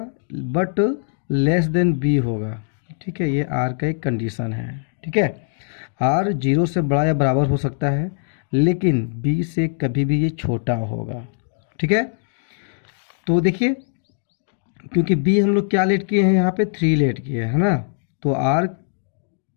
बट लेस देन बी होगा। ठीक है, ये आर का एक कंडीशन है। ठीक है, आर 0 से बड़ा या बराबर हो सकता है, लेकिन बी से कभी भी ये छोटा होगा। ठीक है, तो देखिए क्योंकि बी हम लोग क्या लेट किए हैं, यहाँ पे 3 लेट किए हैं, है ना, तो आर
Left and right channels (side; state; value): right; silent; digital silence